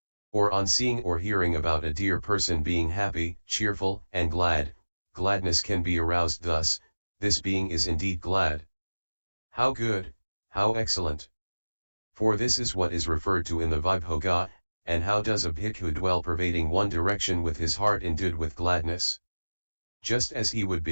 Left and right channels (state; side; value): inverted; both; correlation -1.00